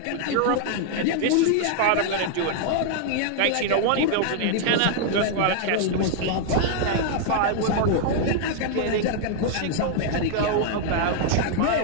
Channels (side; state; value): both; different; correlation 0.00